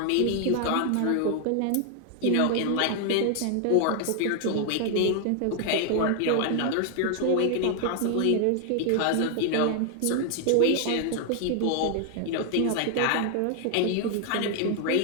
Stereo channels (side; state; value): both; different; correlation 0.00